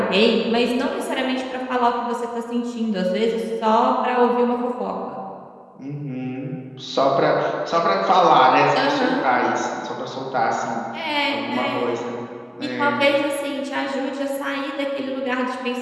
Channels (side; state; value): both; identical; correlation 1.00